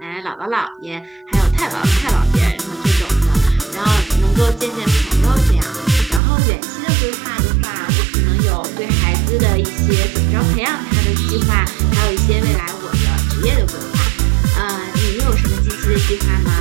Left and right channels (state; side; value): drops out; left; at 6.2 s